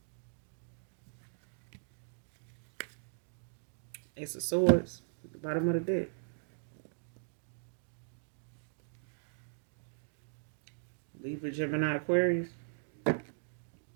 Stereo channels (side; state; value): left; silent; digital silence